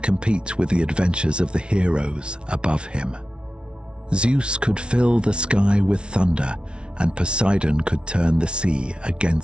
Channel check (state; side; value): late; left; 0.057 ms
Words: with the adventures of the heroes above him. Zeus could fill the sky with thunder, and Poseidon could turn the sea